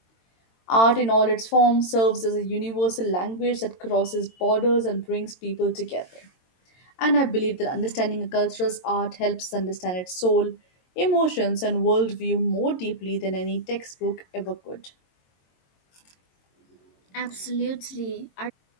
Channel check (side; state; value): right; late; 22 ms